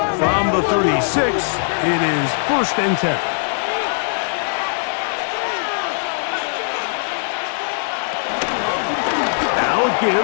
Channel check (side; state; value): right; silent; digital silence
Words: from the 36, it is 1st and 10. Now a